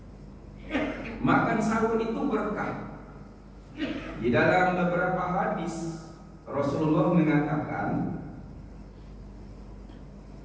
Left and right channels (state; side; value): identical; both; correlation 1.00